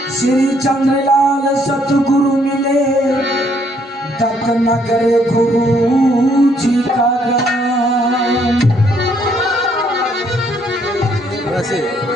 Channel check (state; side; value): normal; both; correlation 0.68